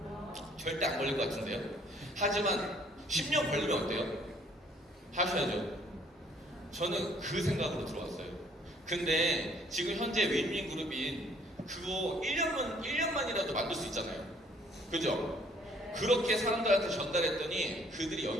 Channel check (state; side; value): normal; both; correlation 0.61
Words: 절대 안 걸릴 것 같은데요. 하지만 10년 걸리면 어때요? 하셔야죠. 저는 그 생각으로 들어왔어요. 근데 지금 현재 윈윈그룹인 그거 1년만이라도 만들 수 있잖아요. 그죠? 그렇게 사람들한테 전달했더니 그들이